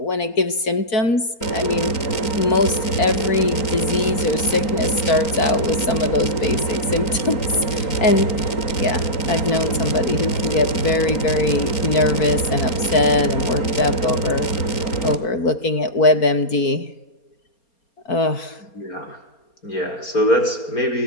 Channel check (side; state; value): right; late; 4.3 ms